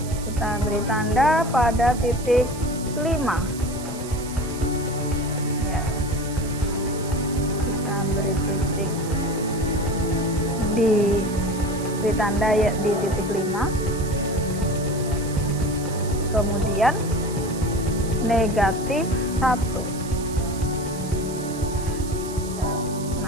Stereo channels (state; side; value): noise; right; hiss, 14 dB below the sound